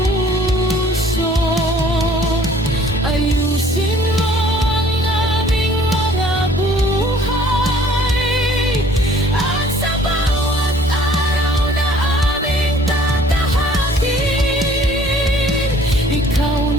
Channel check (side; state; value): both; normal; correlation 0.55